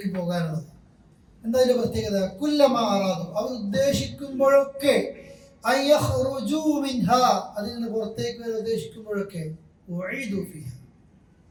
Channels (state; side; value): identical; both; correlation 1.00